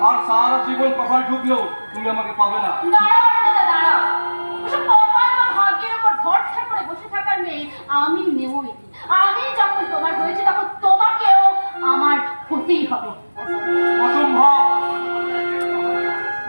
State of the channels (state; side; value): inverted; both; correlation -1.00